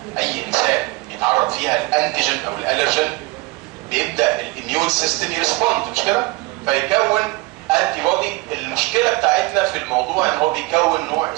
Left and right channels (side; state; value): left; quieter; 23.3 dB